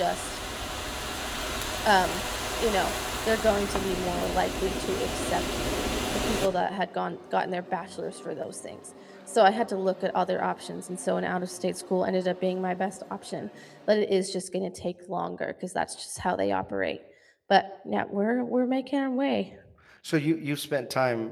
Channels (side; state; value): both; identical; correlation 1.00